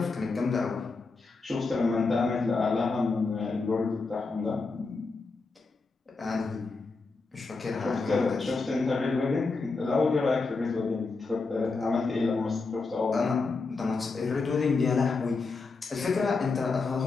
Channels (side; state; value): right; quieter; 4.0 dB